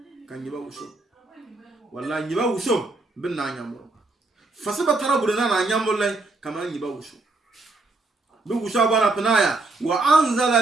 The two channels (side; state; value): left; quieter; 3.3 dB